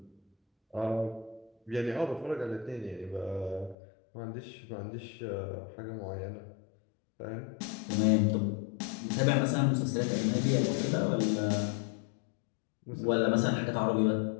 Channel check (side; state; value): right; drops out; at 3.8 s